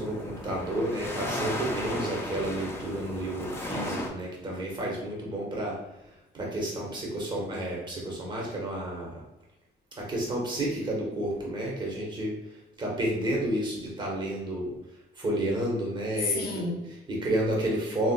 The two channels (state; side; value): normal; both; correlation 0.51